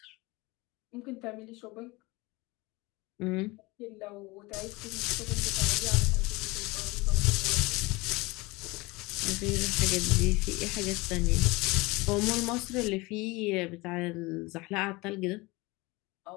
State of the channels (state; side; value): quieter; right; 23.4 dB